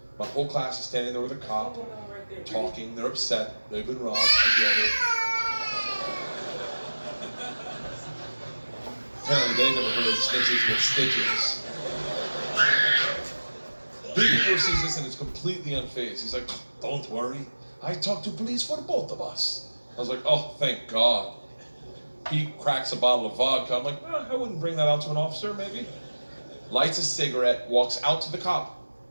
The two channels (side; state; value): both; inverted; correlation -1.00